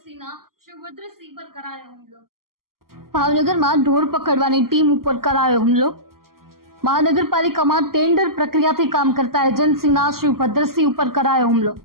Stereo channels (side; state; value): left; late; 0.92 ms